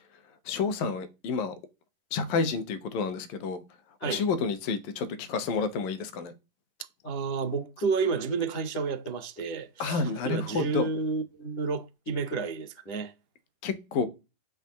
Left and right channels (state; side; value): late; right; 11 ms